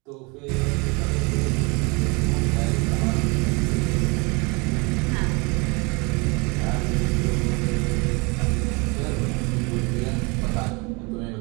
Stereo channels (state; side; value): quieter; left; 28.7 dB